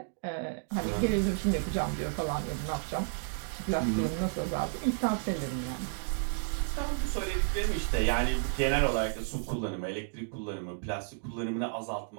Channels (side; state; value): left; silent; digital silence